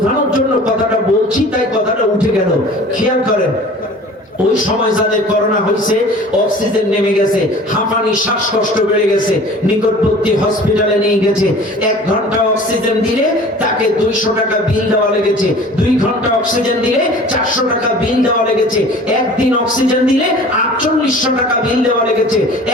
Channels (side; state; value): both; normal; correlation 0.44